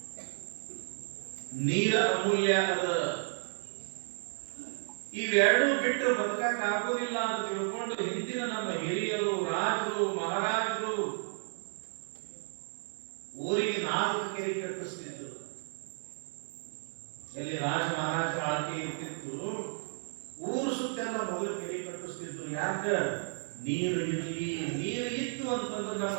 ನೀರ ಅಮೂಲ್ಯ ಅದ. ಇವೆರಡೂ ಬಿಟ್ಟು ಬದುಕಕ್ಕೆ ಆಗೋದಿಲ್ಲ ಅಂತ ತಿಳ್ಕೊಂಡು ಹಿಂದಿನ ನಮ್ಮ ಹಿರಿಯರು, ರಾಜರು, ಮಹಾರಾಜರು ಊರಿಗೆ 4 ಕೆರೆ ಕಟ್ಟಿಸ್ತಿದ್ರು. ಎಲ್ಲಿ ರಾಜ ಮಹಾರಾಜ ಆಳ್ಕೆ ಇರ್ತಿತ್ತು, ಊರು ಸುತ್ತೆಲ್ಲ ಮೊದಲು ಕೆರೆ ಕಟ್ಟಿಸ್ತಿದ್ರು. ಯಾಕ? ನೀರು ಇರಲಿ. ನೀರು ಇತ್ತು ಅಂತಂದ್ರೆ ನಮ್ಮ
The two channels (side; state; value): left; silent; digital silence